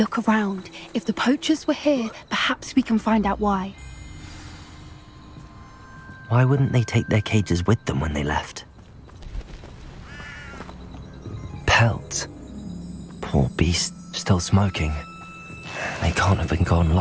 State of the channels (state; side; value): identical; both; correlation 1.00